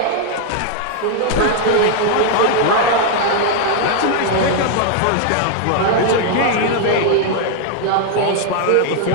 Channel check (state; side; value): different; both; correlation 0.00